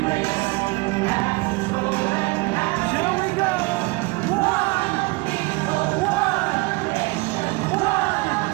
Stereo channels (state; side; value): quieter; left; 25.3 dB